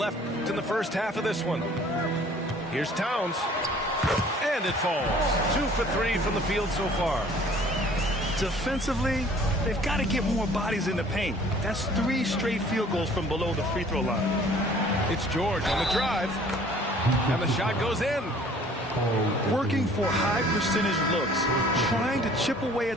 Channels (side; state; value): both; normal; correlation 0.53